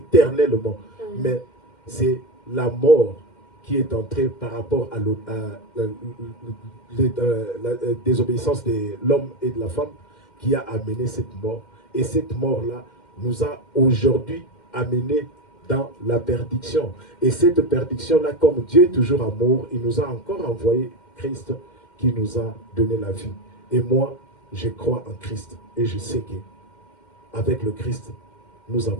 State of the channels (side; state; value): right; late; 2.1 ms